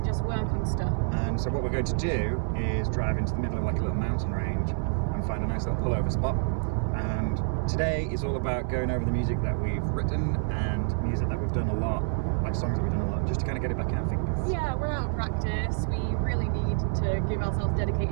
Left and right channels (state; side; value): silent; left; 58 dB below the other